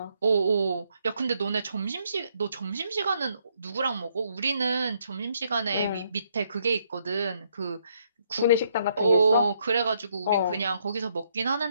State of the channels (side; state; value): both; inverted; correlation -0.72